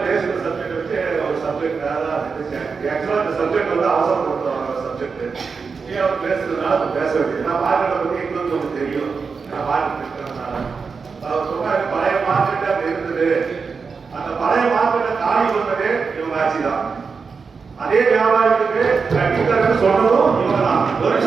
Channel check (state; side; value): quieter; left; 5.2 dB